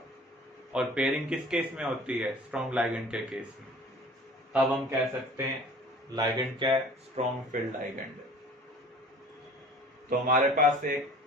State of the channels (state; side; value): normal; both; correlation 0.46